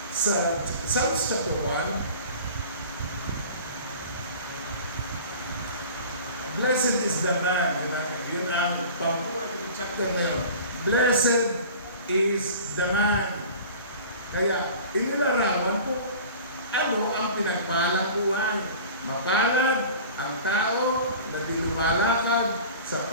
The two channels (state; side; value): inverted; both; correlation -0.41